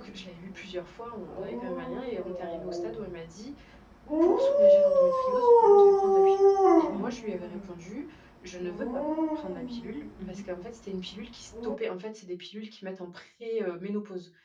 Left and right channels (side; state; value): both; identical; correlation 1.00